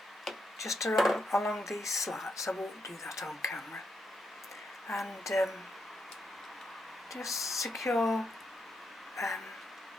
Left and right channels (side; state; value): both; normal; correlation 0.81